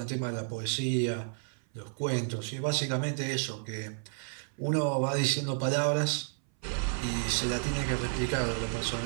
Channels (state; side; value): silent; left; 57 dB below the other